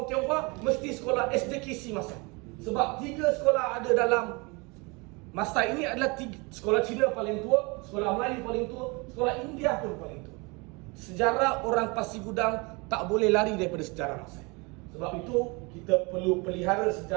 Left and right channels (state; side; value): quieter; left; 28.1 dB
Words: Tionghoa, mesti sekolah SDKC Masai. Sebab 3 sekolah ada dalam Masai ini adalah 3. Sekolah Cina paling tua, sekolah Melayu paling tua, sekolah India pun paling tua. Sejarah orang Pasir Gudang tak boleh lari daripada sejarah Masai. Sebab itu kita perlu pelihara